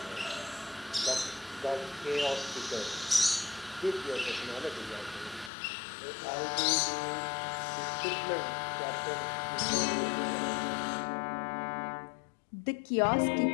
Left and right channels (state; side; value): drops out; right; at 5.5 s